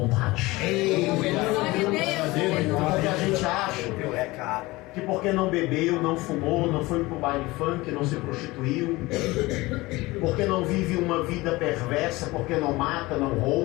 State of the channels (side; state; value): right; quieter; 20.9 dB